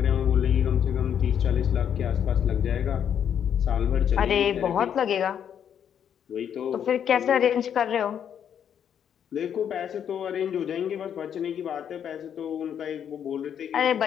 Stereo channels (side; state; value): right; quieter; 8.7 dB